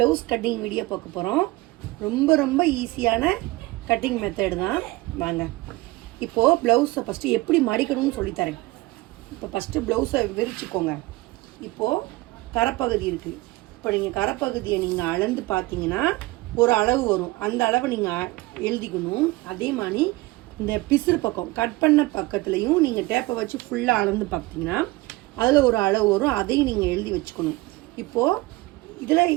கட்டிங் வீடியோ பார்க்க போகிறோம். ரொம்ப ரொம்ப ஈஸியான கட்டிங் மெத்தடு தான். வாங்க இப்போது ப்ளவுஸை ஃபஸ்ட்டு எப்படி மடிக்கணும்னு சொல்லித்தரேன். இப்போ ஃபஸ்ட்டு ப்ளவுஸை விரிச்சுக்கோங்க. இப்போது கரைப்பகுதி இருக்குது. இப்போ நீங்கள் கரைப்பகுதியை நீங்கள் அளந்து பார்த்தீங்கன்னா ஒரு அளவு வரும். அந்த அளவை நீங்கள் எழுதிக்கணும். அதே மாதிரி இந்த பிசுறு பக்கம் கட் பண்ண பக்கத்துலையும் நீங்கள் டேப்பை வச்சு ஃபுல்லாக அளந்து பார்த்தீங்கன்னா அதில் ஒரு அளவு வரும். அதையும் நீங்கள் எழுதி வச்சுக்கணும். இப்போது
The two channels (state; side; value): quieter; left; 20.9 dB